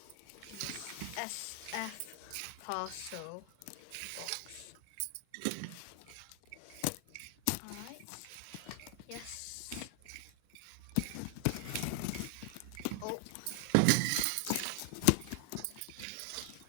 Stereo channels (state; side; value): different; both; correlation 0.00